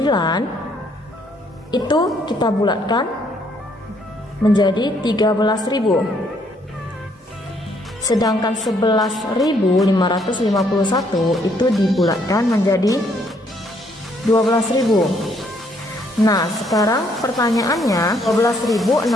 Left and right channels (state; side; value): normal; both; correlation 0.68